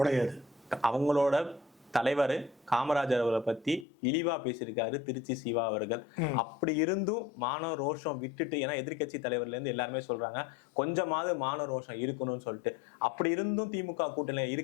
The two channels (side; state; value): right; drops out; at 3.9 s